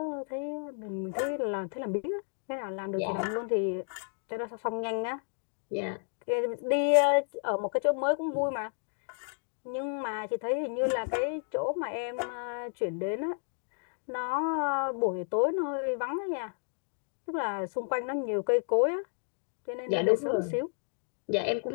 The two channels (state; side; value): silent; right; 57 dB below the other